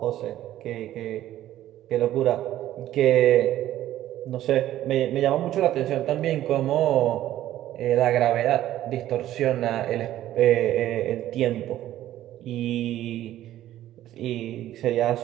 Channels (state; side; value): quieter; left; 13.3 dB